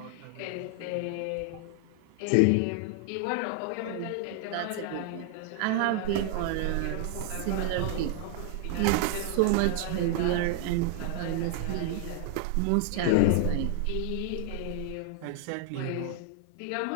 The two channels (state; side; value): different; both; correlation 0.00